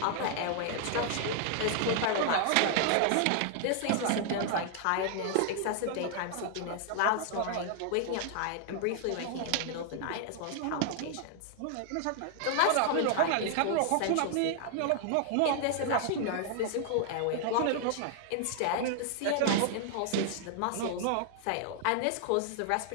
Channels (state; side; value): different; both; correlation 0.00